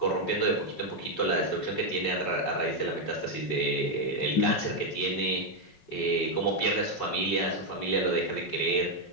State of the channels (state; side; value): late; right; 5.4 ms